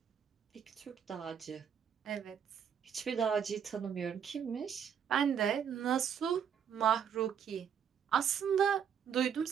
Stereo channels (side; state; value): left; quieter; 8.0 dB